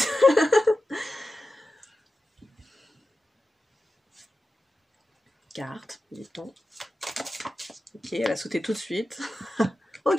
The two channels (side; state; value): both; normal; correlation 0.92